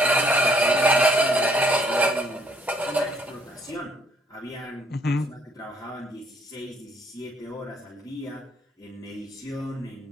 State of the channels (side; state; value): both; normal; correlation 0.65